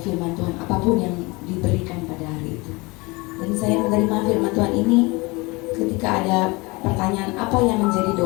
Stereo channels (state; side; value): quieter; right; 25.2 dB